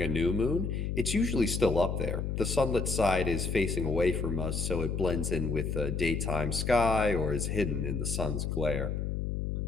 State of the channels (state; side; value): noise; left; hum, 2 dB below the sound